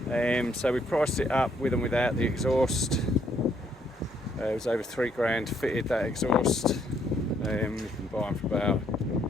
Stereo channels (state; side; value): normal; both; correlation 0.69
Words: So we priced it up with and without the exhaust. It was over £3 fitted, that exhaust. You can buy them for about,